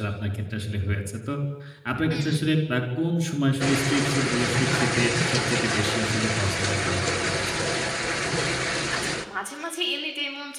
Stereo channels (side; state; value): both; identical; correlation 1.00